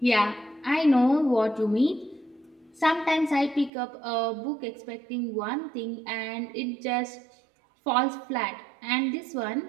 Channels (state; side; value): drops out; left; at 3.7 s